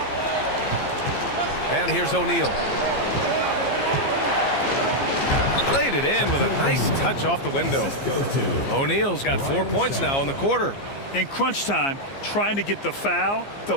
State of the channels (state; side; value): late; right; 15 ms